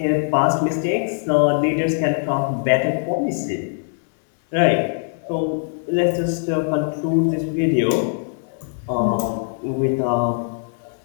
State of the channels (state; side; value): silent; right; digital silence